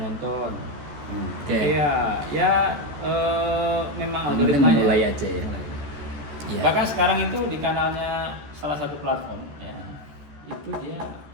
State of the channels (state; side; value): late; left; 14 ms